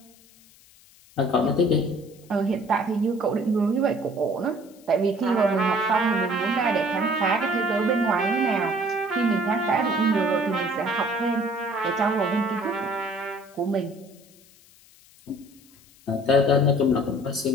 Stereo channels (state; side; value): noise; left; hiss, 27 dB below the sound